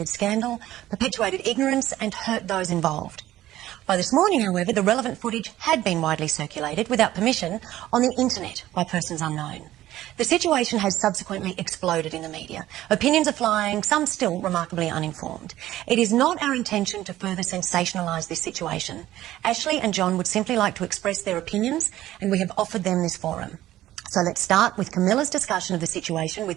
scandal, perpetuated ignorance and hurt those involved. By this morning, however, the relevant footage had been widely circulated without permission on the internet by persons unknown. The situation has subsequently exploded in the media. Opinions are flying, some still remarkably uninformed. It is not our intention to further sensationalise this situation. Ashley and John would simply like to express their opinions, and we have offered them this forum. So let's start with Camilla's discussion of the situation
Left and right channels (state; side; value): quieter; left; 14.4 dB